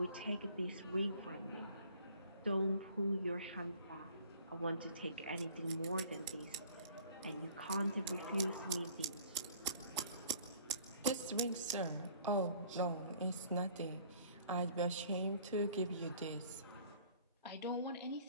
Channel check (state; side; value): inverted; both; correlation -0.54